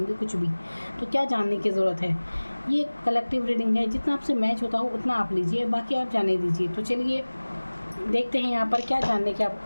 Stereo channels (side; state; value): both; inverted; correlation -1.00